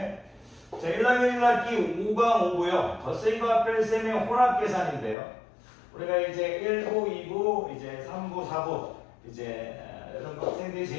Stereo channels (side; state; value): right; drops out; at 5.2 s